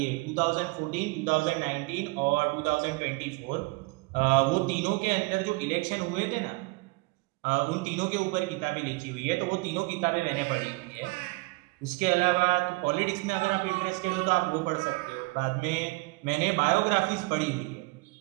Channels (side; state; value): left; quieter; 25.9 dB